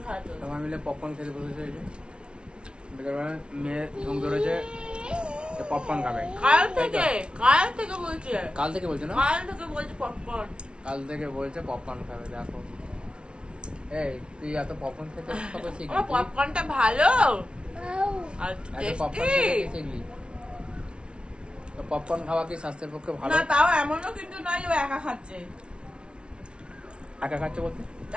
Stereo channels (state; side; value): late; left; 0.057 ms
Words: খাওয়াতে হবে। সবাই মিলে পপকর্ন খেতে বসেছে। এই যে বিকেলবেলায় মেয়ে ঘুম ধরেছে, পপকর্ন খাবে। কাল থেকে বলছে, কাল থেকে বলছে না, কাল থেকে বলছে পপকর্ন। কাল থেকে বলছে পপকর্ন খাবে। দেখো এই তুই এত পপকর্ন খেতে কবে শিখলি? আমার পপকর্নটা ভালো আর এত পপকর্ন টেস্টি। খেতে শিখলি? তো পপকর্ন খাওয়া কি স্বাস্থ্যের পক্ষে ভালো? না তাও এমনও কিন্তু নয় যে ও একা খাচ্ছে। একা খাচ্ছে বলতে?